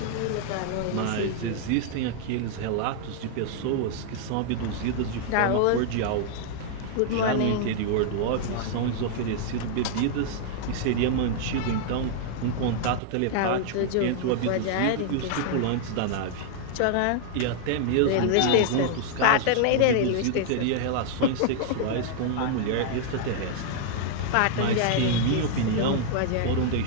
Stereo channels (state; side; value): different; both; correlation -0.01